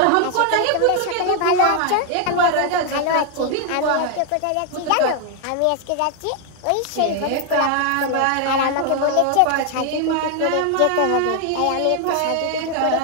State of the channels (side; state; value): both; different; correlation 0.00